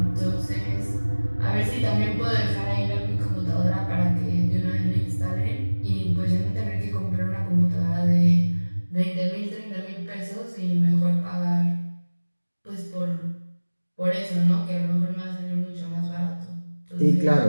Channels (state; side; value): inverted; both; correlation -1.00